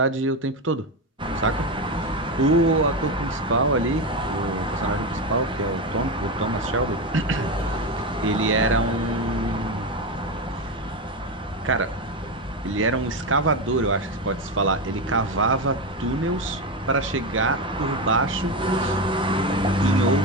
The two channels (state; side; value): normal; both; correlation 0.15